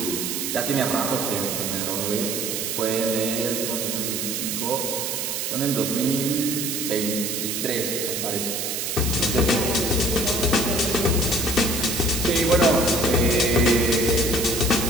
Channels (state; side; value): noise; right; hiss, 2 dB below the sound